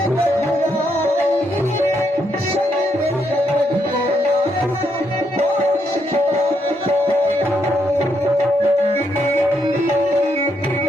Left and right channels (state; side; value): normal; both; correlation 0.77